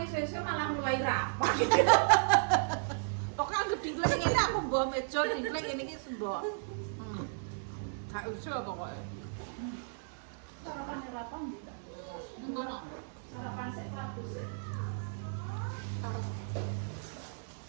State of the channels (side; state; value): left; silent; digital silence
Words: esuk-esuk malah mulai rapat. Kok kan gede ngene aku mbok meja diklek ngene iki sembok. Gak usah pokoke. Sarapan apa ndak? Ngono. Sarapan sik Prabu sik.